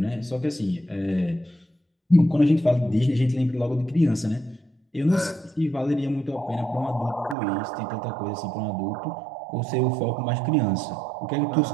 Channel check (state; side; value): drops out; left; at 7.4 s